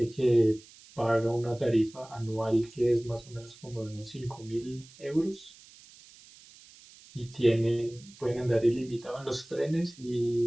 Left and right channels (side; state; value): right; noise; hiss, 23 dB below the sound